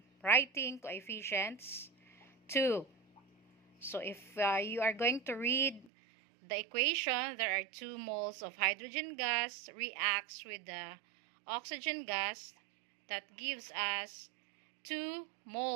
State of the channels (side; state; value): left; drops out; at 5.9 s